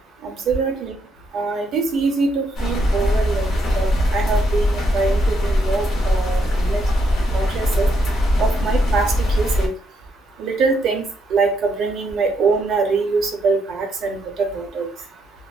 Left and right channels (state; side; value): normal; both; correlation 0.77